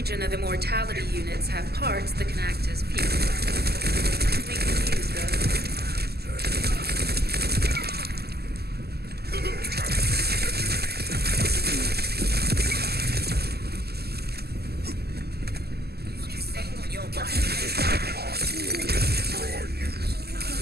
of Immortality units have parts that can act as fuel. We can use those.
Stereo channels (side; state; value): left; late; 0.46 ms